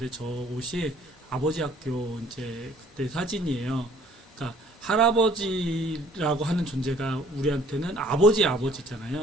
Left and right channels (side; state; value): both; normal; correlation 0.56